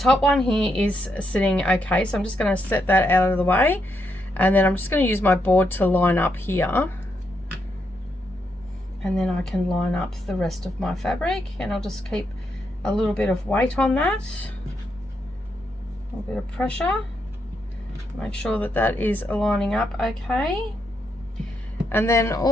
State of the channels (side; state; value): both; normal; correlation 0.80